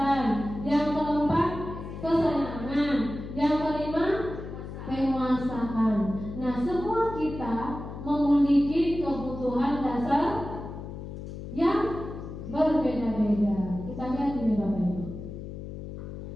Yang keempat kesenangan. Yang kelima penguasaan. Nah, semua kita memiliki kebutuhan dasar yang berbeda-beda. berbeda. Kita lihat ini Bapak Ibu.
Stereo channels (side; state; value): left; noise; hum, 10 dB below the sound